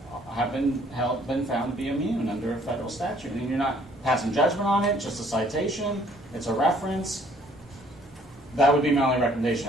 have been found to be immune under a federal statute. And you're not passing judgment on it, just a citation, it's a reference. That would be my only recommendation.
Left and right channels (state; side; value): normal; both; correlation 0.61